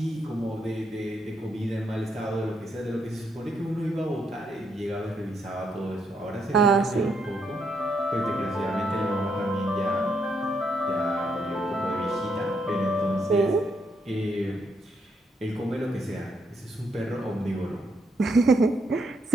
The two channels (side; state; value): both; normal; correlation 0.76